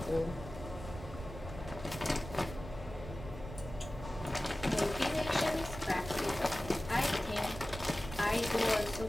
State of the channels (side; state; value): right; noise; rumble, 11 dB below the sound